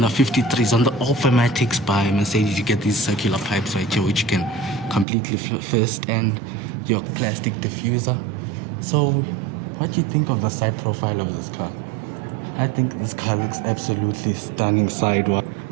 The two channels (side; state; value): left; drops out; at 5.1 s